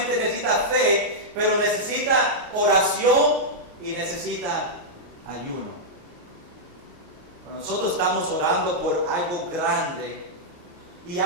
necesita fe, pero necesita oración y necesita ayuno. Cuando nosotros estamos orando por algo grande y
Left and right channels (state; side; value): late; left; 28 ms